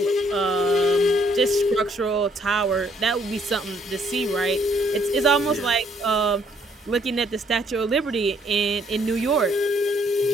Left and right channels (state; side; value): normal; both; correlation 0.67